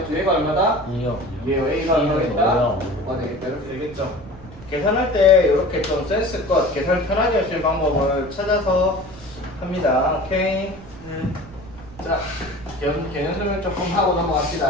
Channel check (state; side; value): noise; right; rumble, 18 dB below the sound